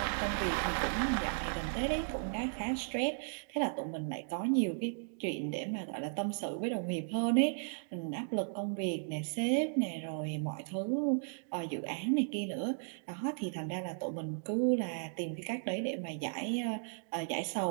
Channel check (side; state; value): left; silent; digital silence